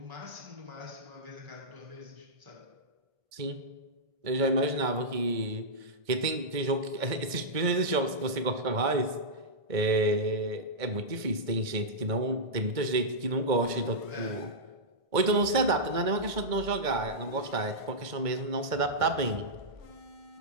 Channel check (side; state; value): left; late; 1.5 ms